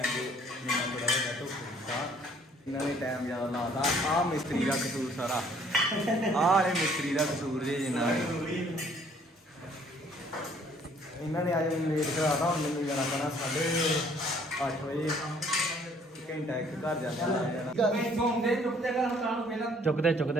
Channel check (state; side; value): normal; both; correlation 0.60